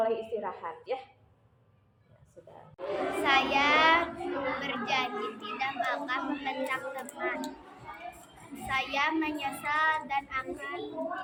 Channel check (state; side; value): identical; both; correlation 1.00